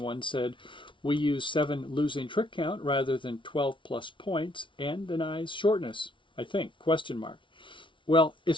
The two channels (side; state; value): right; late; 0.24 ms